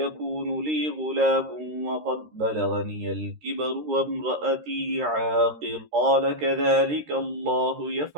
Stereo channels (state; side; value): late; left; 13 ms